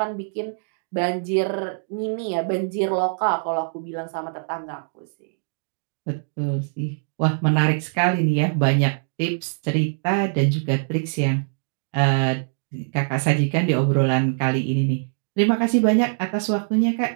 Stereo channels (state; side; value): silent; left; digital silence